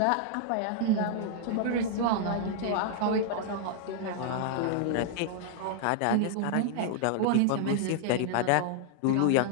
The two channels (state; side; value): different; both; correlation 0.00